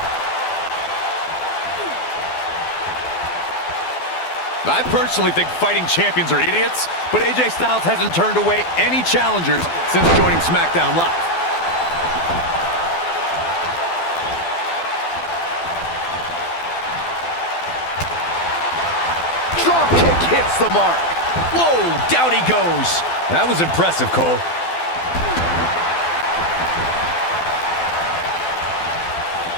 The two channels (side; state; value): right; late; 12 ms